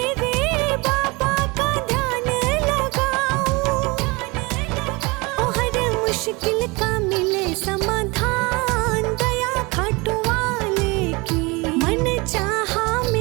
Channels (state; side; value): quieter; left; 25.9 dB